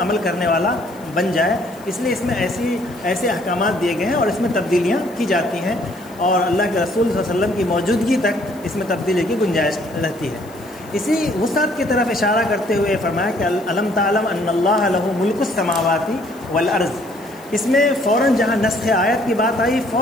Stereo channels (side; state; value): left; noise; hiss, 25 dB below the sound